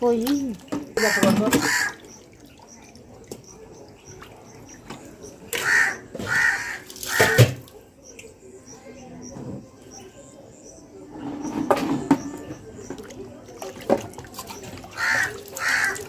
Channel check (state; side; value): identical; both; correlation 1.00